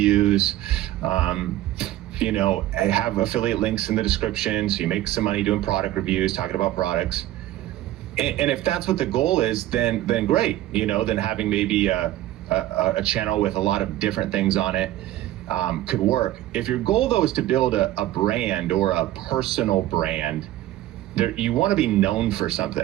have affiliate links in the description, so you make some money doing product reviews, talking about products. And if that's what the goal is, then great. Then having maybe a channel with a lot of different things on it could work. If your goal though is to build a brand or a personal brand, you want to be known for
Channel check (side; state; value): left; quieter; 14.7 dB